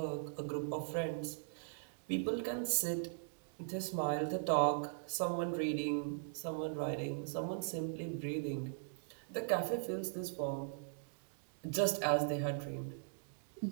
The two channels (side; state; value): left; silent; digital silence